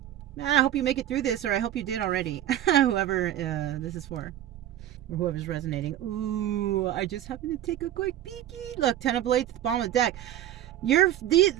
I hope you make it through this, or I hope you did already. Whoever this is for. Or whoever's resonating. Ooh, I just happened to take a quick peeky. Look, 10 of Blades at the bottom of the deck.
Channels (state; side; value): quieter; left; 12.2 dB